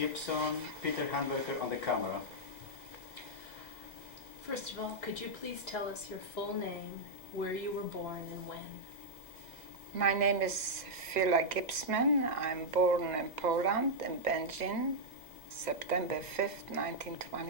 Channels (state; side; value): late; left; 2.0 ms